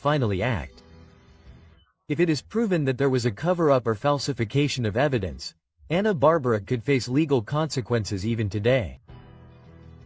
act. If it is proven that there was a cover-up or falsification of evidence, 𝗂𝗑𝗏𝗏 could face legal consequences even today.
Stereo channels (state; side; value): identical; both; correlation 1.00